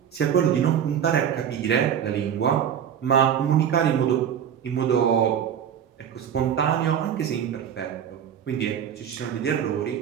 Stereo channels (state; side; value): quieter; left; 8.8 dB